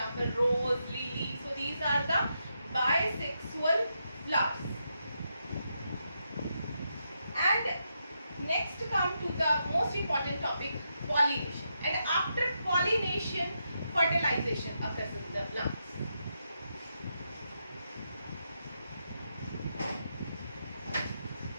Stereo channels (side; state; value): both; inverted; correlation -0.83